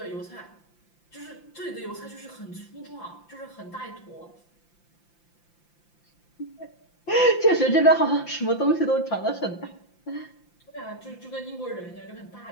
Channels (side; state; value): right; late; 5.8 ms